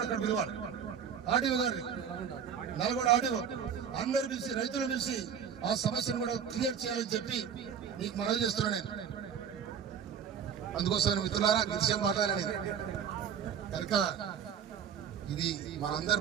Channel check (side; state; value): left; quieter; 7.8 dB